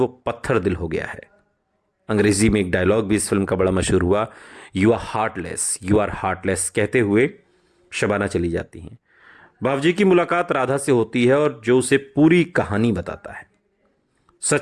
पत्थर दिल हो गया है। अंग्रेजी में एक डायलॉग भी इस फिल्म का बड़ा मशहूर हुआ, यू आर हार्टलेस कहते हुए शबाना चली जाती हैं। बावजी की मुलाकात राधा से होती है और जो उसे पूरी कहानी बताता है।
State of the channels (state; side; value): identical; both; correlation 1.00